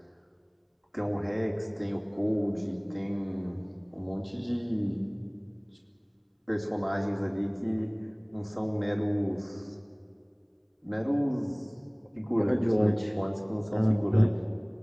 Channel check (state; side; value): identical; both; correlation 1.00